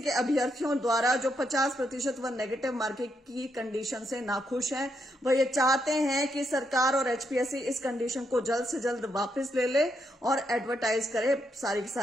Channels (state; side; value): normal; both; correlation 0.79